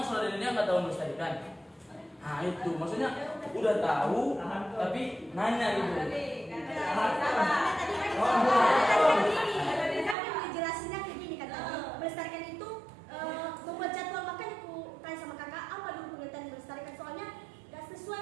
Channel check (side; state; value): left; drops out; at 10.2 s